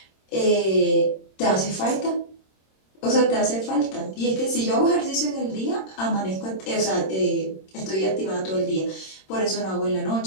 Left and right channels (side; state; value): right; late; 26 ms